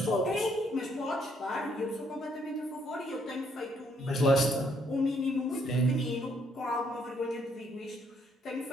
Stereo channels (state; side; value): normal; both; correlation 0.70